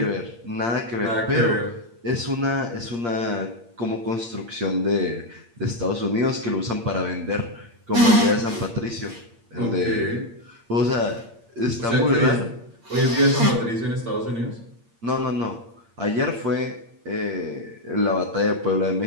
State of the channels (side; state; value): left; late; 8.6 ms